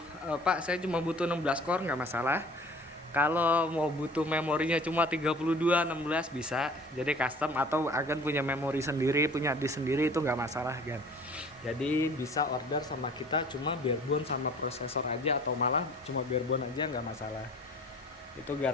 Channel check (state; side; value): normal; both; correlation 0.47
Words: Pak saya cuma butuh 16 core nggak masalah. Kalau mau butuh memorinya cuma 32 16 bisa. Jadi custom, atau agan punya memori sendiri, punya disk sendiri, itu nggak masalah kan. Jadi bisa order sama kita cuma barebone sama prosesor aja, atau malah cuma barebone aja nggak masalah. Itu